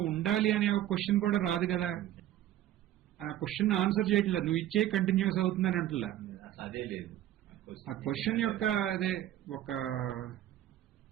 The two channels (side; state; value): left; quieter; 12.9 dB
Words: ఉండాలి అనే ఒక క్వశ్చన్ కూడా రాదు కదా. ఆ క్వశ్చన్ ఆన్సర్ చేయట్లేదు, నువ్వు ఇచ్చే కంటిన్యూస్ అవుతుందని అంటలా. అదే లేదు, ఆ క్వశ్చన్ యొక్క అదే ఒక